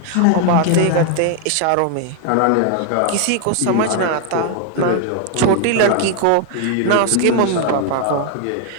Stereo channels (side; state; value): both; different; correlation 0.00